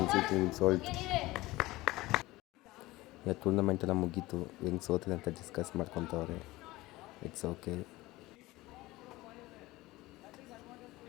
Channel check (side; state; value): right; quieter; 19.3 dB